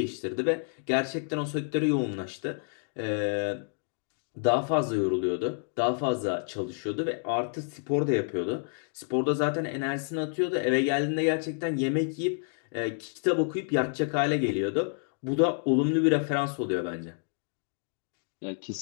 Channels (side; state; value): right; silent; 58 dB below the other